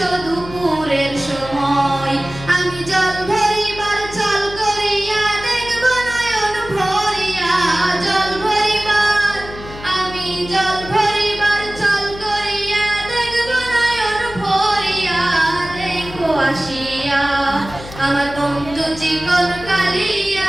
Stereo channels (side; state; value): left; noise; hum, 14 dB below the sound